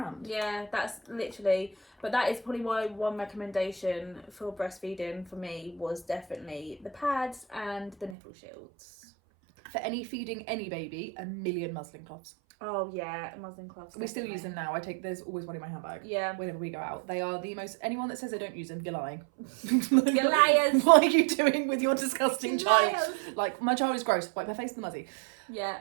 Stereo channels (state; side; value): drops out; left; at 8.2 s